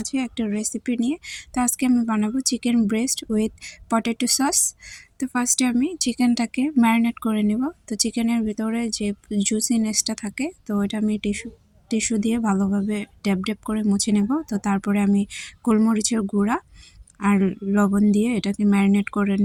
একটা রেসিপি নিয়ে। তো আজকে আমি বানাবো chicken breast with potato sauce. তো ফার্স্টে আমি চিকেনটাকে ম্যারিনেট করে নেব। তো চিকেনের ভিতরে যে জুসিনেসটা থাকে, তো ওইটা আমি টিস্যু দিয়ে ভালোভাবে ড্যাব করে মুছে নেব। তো তারপরে আমি গোলমরিচের গুঁড়া আর লবণ দিয়ে এটাকে ম্যারিনেট করে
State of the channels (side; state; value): both; identical; correlation 1.00